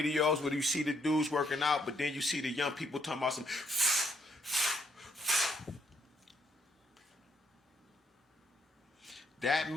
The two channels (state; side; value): normal; both; correlation 0.70